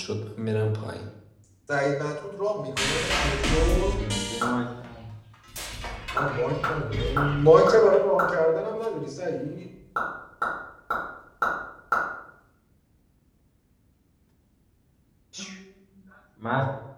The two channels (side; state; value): both; identical; correlation 1.00